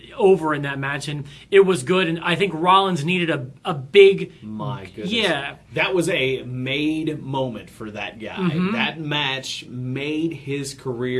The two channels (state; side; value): identical; both; correlation 1.00